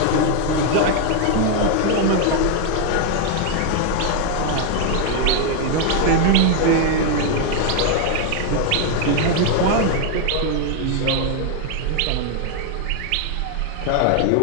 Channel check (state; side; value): different; both; correlation 0.00